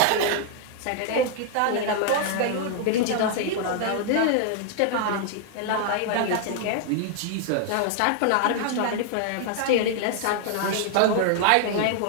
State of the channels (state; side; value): different; both; correlation 0.00